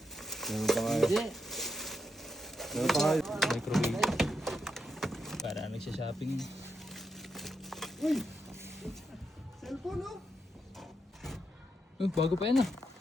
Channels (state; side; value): normal; both; correlation 0.83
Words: Meron pa nga. Meron pa nga. Microwave. Para nagsha-shopping yun. Uy! Cellphone, oh! Bago pa yan ah.